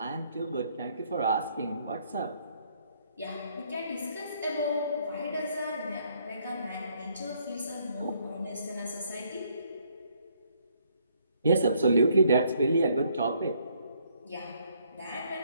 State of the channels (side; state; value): both; inverted; correlation -0.68